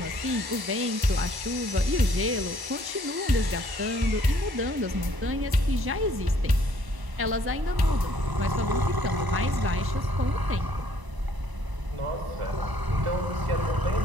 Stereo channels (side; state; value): left; late; 1.1 ms